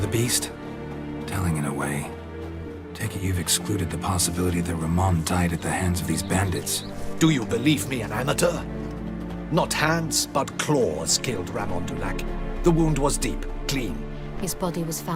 beast? Telling in a way. Take it you've excluded the possibility that Ramon died at the hands of these bandits. Do you believe me an amateur? Not hands, but claws killed Ramon Dulac. The wound was deep, clean. His body was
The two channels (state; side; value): identical; both; correlation 1.00